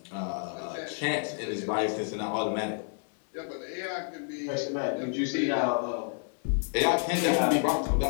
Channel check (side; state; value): right; silent; 58 dB below the other